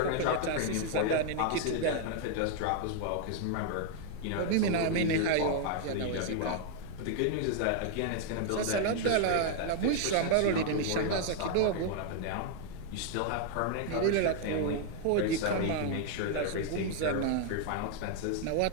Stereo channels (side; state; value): both; different; correlation 0.00